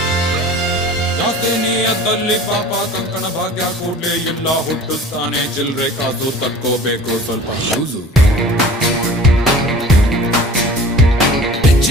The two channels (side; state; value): both; normal; correlation 0.42